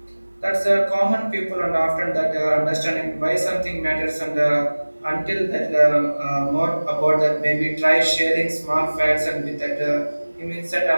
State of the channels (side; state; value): both; inverted; correlation -1.00